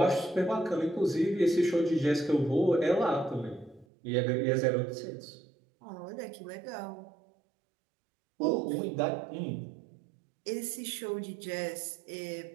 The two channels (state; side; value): drops out; left; at 3.9 s